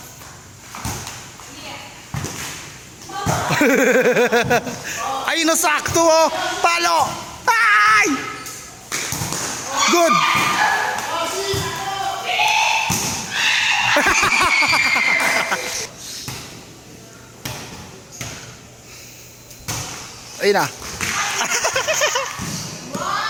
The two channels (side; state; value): both; identical; correlation 1.00